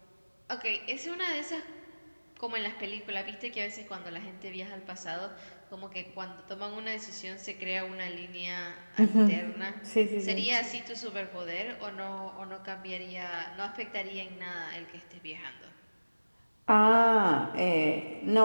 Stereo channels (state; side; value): inverted; both; correlation -1.00